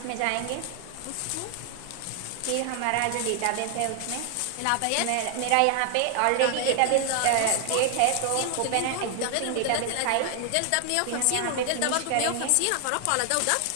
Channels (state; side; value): different; both; correlation 0.00